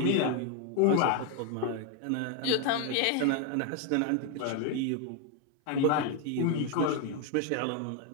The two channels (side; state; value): both; different; correlation 0.01